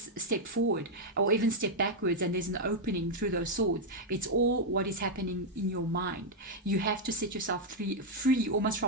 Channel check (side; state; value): both; normal; correlation -0.02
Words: step forward or even step backwards, and there's an opening through those swords. It's all what is happening in your mind. You have to set yourself free almost